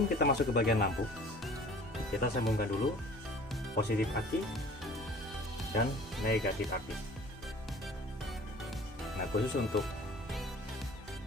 kita masuk ke bagian lampu, kita sambungkan dulu positif aki dan negatif aki. Nah, khusus untuk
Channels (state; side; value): normal; both; correlation 0.47